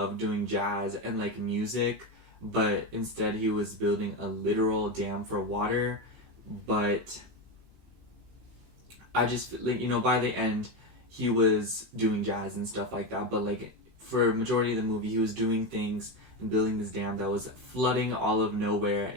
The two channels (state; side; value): late; left; 15 ms